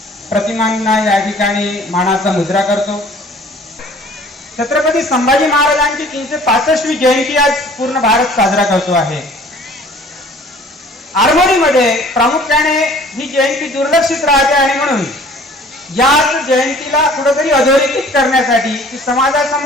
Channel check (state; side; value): normal; both; correlation 0.51